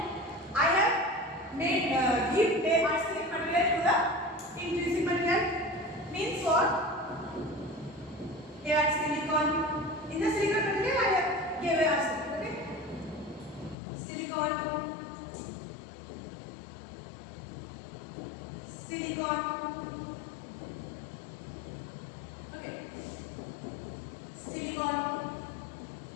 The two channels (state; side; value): drops out; right; at 13.8 s